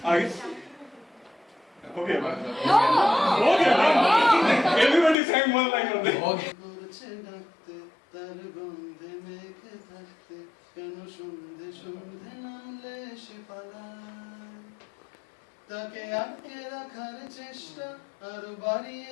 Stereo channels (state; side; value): drops out; right; at 5.2 s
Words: आगे हो गया ना? हो गया ना? Everybody sang one line only. তার গন্ধে মেঘে থাকতে কেন সন্ধে সন্ধে নামলে সে পালায় তাকে আটকে রাখার চেষ্টা আরো বাড়িয়ে